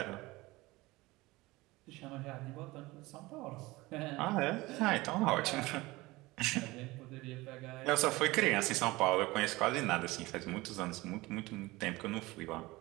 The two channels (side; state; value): left; quieter; 20.7 dB